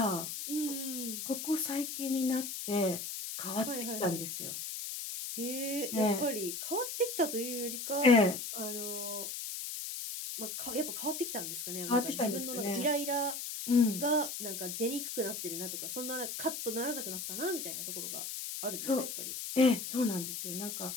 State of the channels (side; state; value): left; noise; hiss, 5 dB below the sound